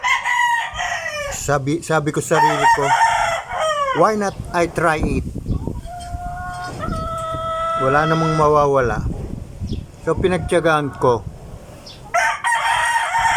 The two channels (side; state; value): both; identical; correlation 1.00